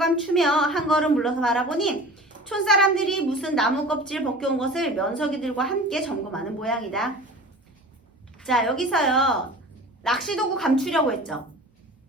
한 걸음 물러서 바라보니 촌사람들이 무슨 나무 껍질 벗겨온 것을 면석이들과 함께 점검하는 모양이다. 자, 여기서요. 낚시도구 감추려고 했죠.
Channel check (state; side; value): normal; both; correlation 0.39